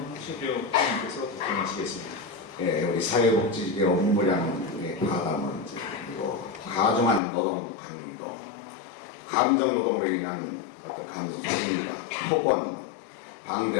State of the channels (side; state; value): right; drops out; at 7.2 s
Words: 최대호 의원님께서 답변하시겠습니다. 예, 우리 사회복지직의 업무량의 과다 문제, 그리고 과중한 노동 강도, 감정 노동으로 인한 어떤 감정 책임과 폭언,